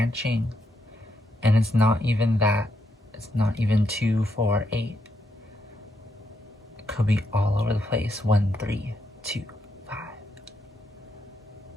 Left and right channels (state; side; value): normal; both; correlation 0.80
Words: and it's not even that. It's not even 2, 4, 8. It could be all over the place. 1, 3, 2, 5.